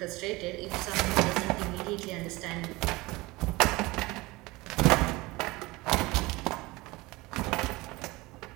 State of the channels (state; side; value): quieter; left; 21.8 dB